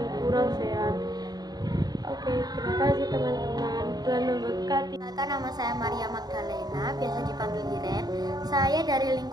kurang sehat." Oke, terima kasih teman-teman. Tuhan memberkati. Nama saya Maria Magdalena, biasa dipanggil Iren. Saya dari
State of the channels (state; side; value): late; left; 0.19 ms